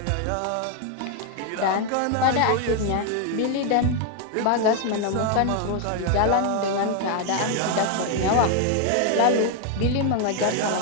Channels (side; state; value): both; different; correlation 0.01